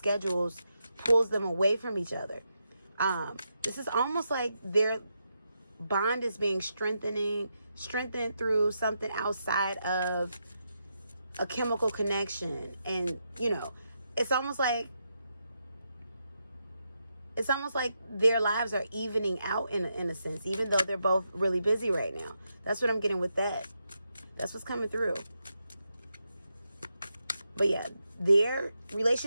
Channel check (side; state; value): both; inverted; correlation -0.84